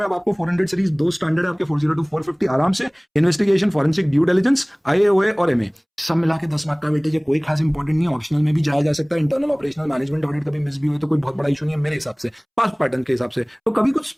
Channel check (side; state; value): both; identical; correlation 1.00